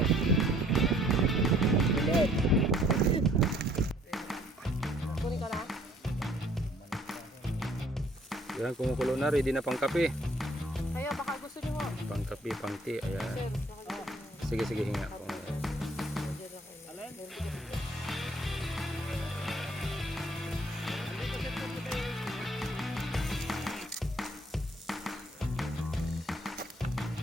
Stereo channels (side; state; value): both; normal; correlation 0.61